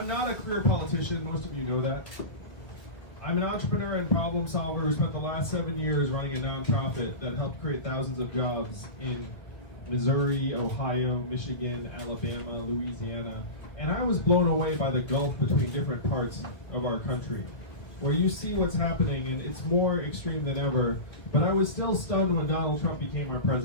not a career politician, most of you know that. I'm an entrepreneur and problem solver who spent the last 7 years running a nonprofit that helped create thousands of jobs in Missouri, Ohio, Michigan, Alabama, Louisiana. And I was blown away by the gulf between different parts of our country, where you see what's happening and it's more extreme than ever. But I was still stunned when Donald Trump became our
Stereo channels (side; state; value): right; late; 1.9 ms